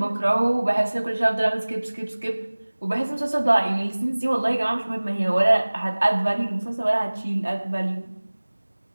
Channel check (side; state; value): both; inverted; correlation -1.00